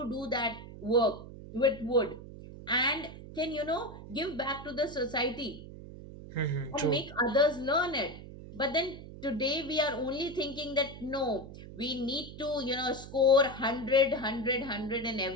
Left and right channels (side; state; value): right; noise; hum, 14 dB below the sound